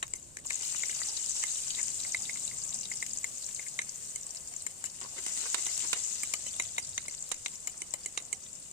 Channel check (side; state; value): right; quieter; 3.9 dB